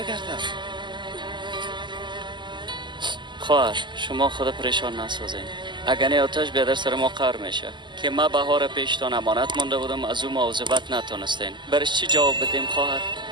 خواهر شما خود پریشان نسازین. اگر نه آتش بیادر سر ما قهر میشه که ما بهار پیشتان امانت مانده بودم از او مواظبت نتونستین. برش چی جواب بدیم خواهر؟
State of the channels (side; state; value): left; late; 0.22 ms